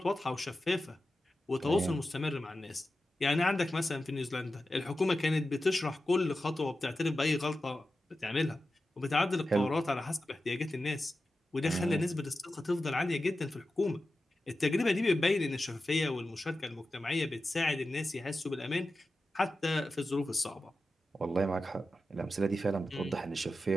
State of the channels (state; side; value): normal; both; correlation 0.92